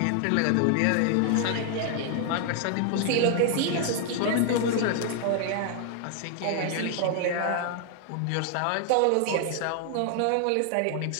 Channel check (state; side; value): different; both; correlation 0.00